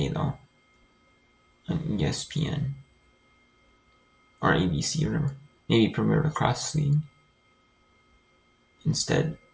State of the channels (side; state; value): both; identical; correlation 1.00